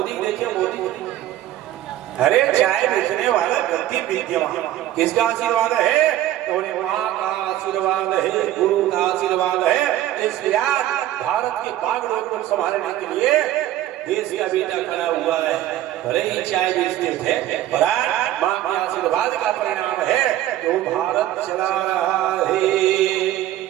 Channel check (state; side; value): quieter; left; 13.5 dB